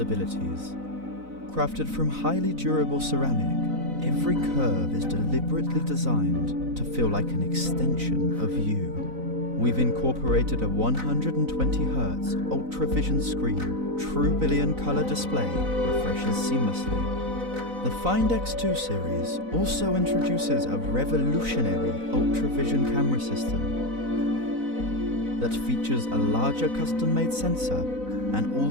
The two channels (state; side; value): late; left; 4.0 ms